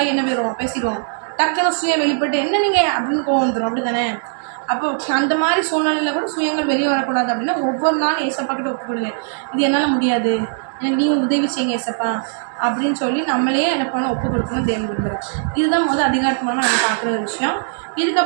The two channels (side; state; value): left; silent; digital silence